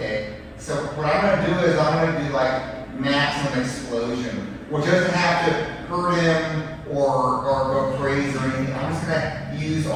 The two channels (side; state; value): both; identical; correlation 1.00